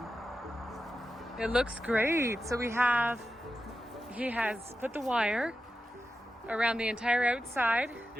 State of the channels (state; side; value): normal; both; correlation 0.90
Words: It looks great. So he has put the wire around the entire outside.